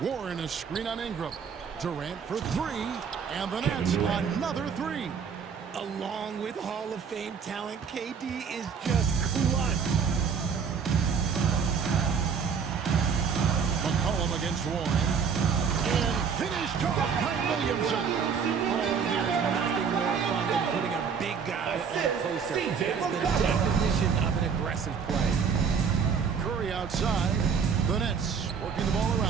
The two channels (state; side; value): quieter; left; 6.4 dB